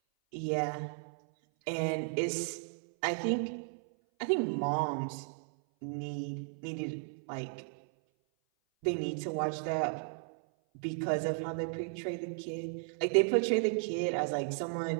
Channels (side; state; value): left; silent; 55 dB below the other